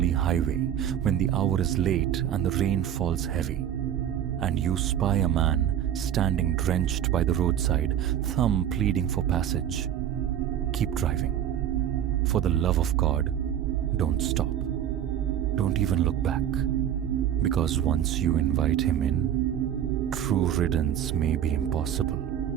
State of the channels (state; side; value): quieter; left; 10.3 dB